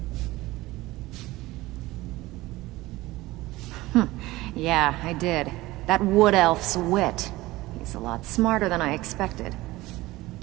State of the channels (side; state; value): left; quieter; 18.9 dB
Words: Yeah, I did. That wood elf's wit. He's a lot smarter than I expected.